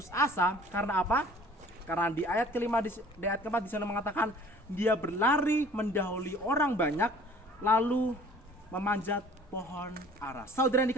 asa. Karena apa? Karena di ayat ke-5 di ayat ke-4 di sana mengatakan dia berlari mendahului orang banyak lalu memanjat pohon ara. Saudara yang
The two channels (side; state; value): both; normal; correlation 0.51